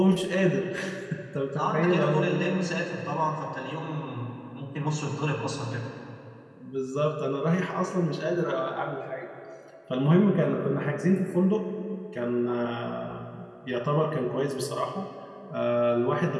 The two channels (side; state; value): both; identical; correlation 1.00